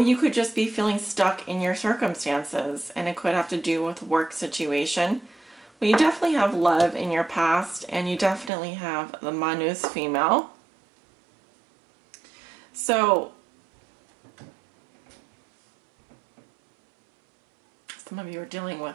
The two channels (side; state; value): left; drops out; at 8.5 s